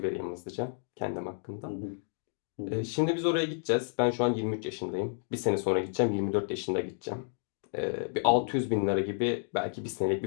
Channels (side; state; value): right; silent; digital silence